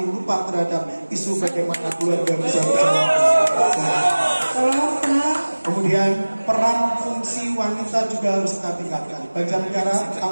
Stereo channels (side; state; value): both; inverted; correlation -1.00